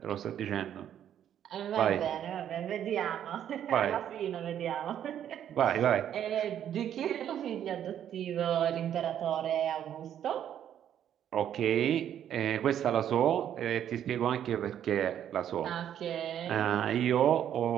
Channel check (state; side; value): quieter; left; 10.1 dB